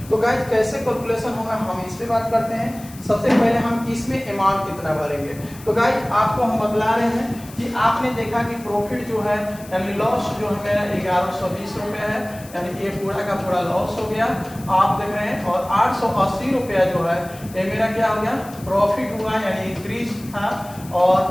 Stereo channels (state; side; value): noise; left; hiss, 19 dB below the sound